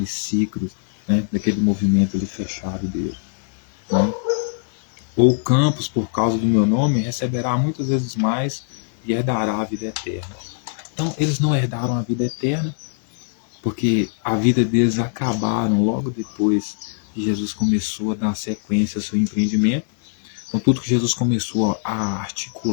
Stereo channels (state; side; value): silent; right; 64 dB below the other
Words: ciclo, né? Daquele movimento ali fechado dele, né? Ou campos, por causa do meu nome, receberá muitas vezes mais e herdará a vida eterna. Então, eles não herdaram a vida eterna, porque a vida deles acabaram logo depois que Jesus começou a dar sequência ao seu empreendimento. Então, tudo que Jesus começou a